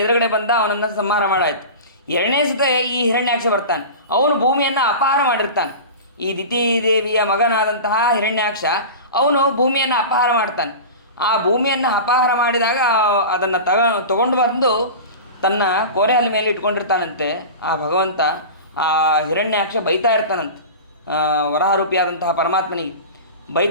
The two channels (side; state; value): both; inverted; correlation -0.31